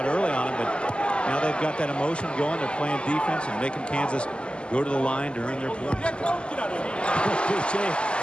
early on them, but now they've got that emotion going. They're playing defense and making Kansas go to the line to earn their points. BJ,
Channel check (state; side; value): late; right; 0.051 ms